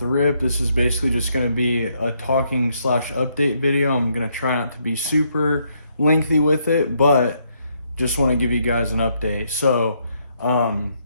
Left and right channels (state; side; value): inverted; both; correlation -0.74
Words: rip. This is basically just going to be a talking slash update video. I'm going to try not to be super lengthy with it, but just want to give you guys an update. So I'm